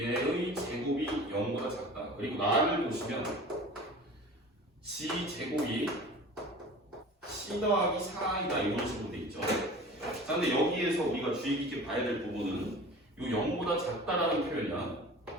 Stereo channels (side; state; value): both; normal; correlation 0.40